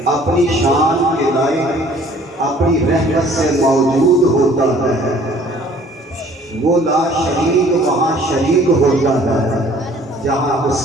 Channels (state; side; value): normal; both; correlation 0.55